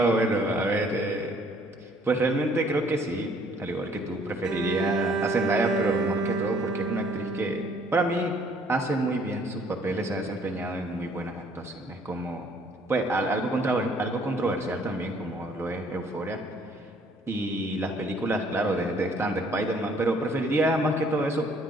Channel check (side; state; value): both; normal; correlation 0.61